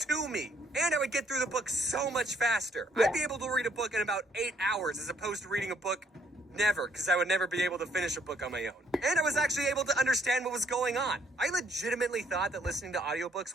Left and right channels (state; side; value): normal; both; correlation 0.67